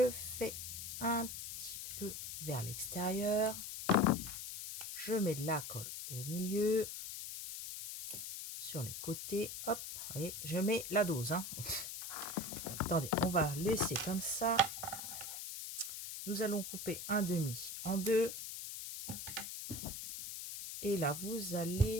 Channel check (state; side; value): noise; left; hiss, 7 dB below the sound